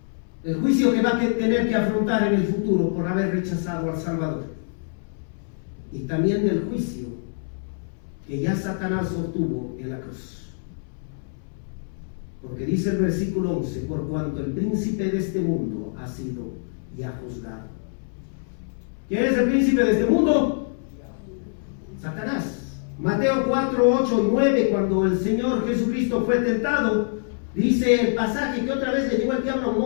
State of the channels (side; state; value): right; silent; 62 dB below the other